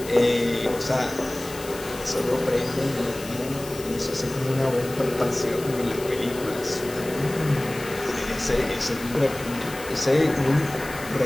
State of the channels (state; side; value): noise; left; hiss, 15 dB below the sound